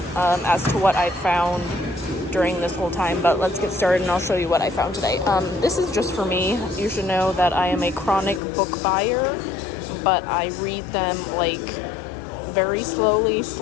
as to what I found during this whole time. But let's get started and I'll show you what I found today. This is just for me. You should know that I am a chronic book buyer, but I read them like very slowly, /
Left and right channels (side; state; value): right; drops out; at 8.4 s